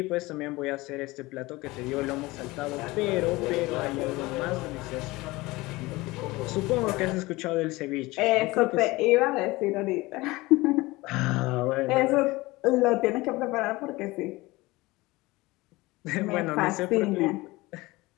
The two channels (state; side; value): quieter; right; 21.0 dB